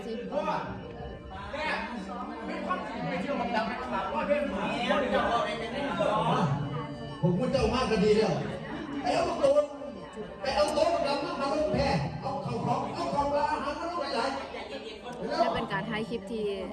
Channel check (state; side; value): identical; both; correlation 1.00